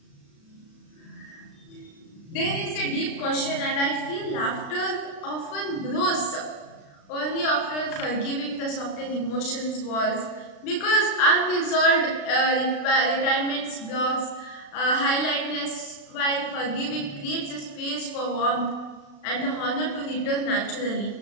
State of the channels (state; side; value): late; right; 36 ms